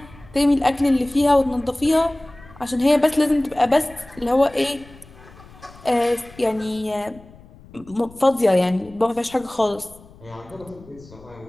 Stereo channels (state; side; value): noise; left; rumble, 22 dB below the sound